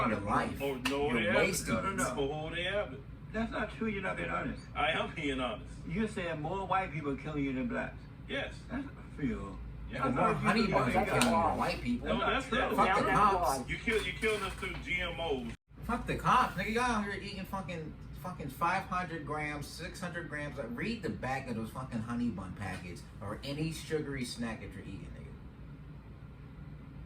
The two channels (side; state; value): both; identical; correlation 1.00